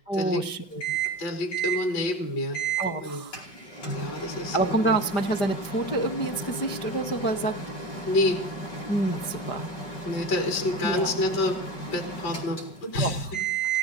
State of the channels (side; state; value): right; late; 5.0 ms